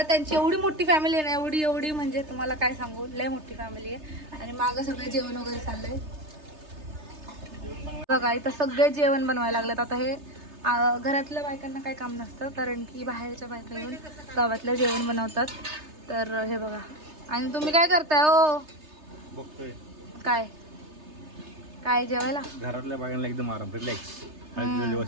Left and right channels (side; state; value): left; late; 3.3 ms